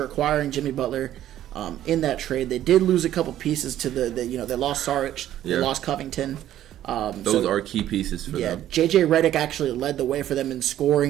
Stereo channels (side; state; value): left; quieter; 12.3 dB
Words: acquiring Jimmy Butler in that trade, they did lose a couple pieces to they lost Saric, they lost Covington. Those are key pieces for them. Yeah, J.J. Redick actually led the way for them in